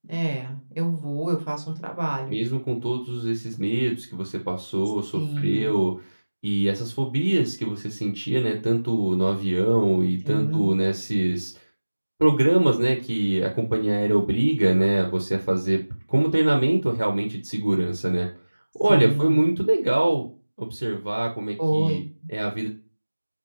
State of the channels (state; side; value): inverted; both; correlation -1.00